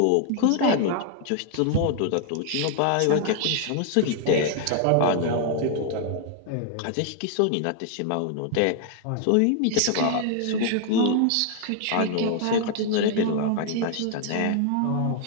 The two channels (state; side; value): different; both; correlation 0.00